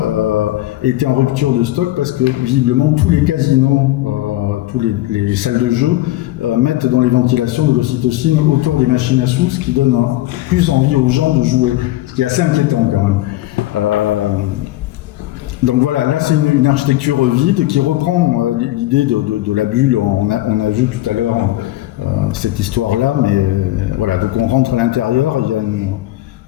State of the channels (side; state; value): right; quieter; 16.5 dB